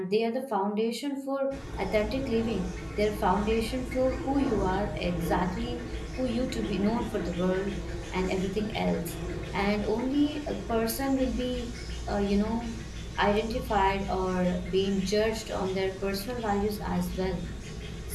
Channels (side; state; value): both; identical; correlation 1.00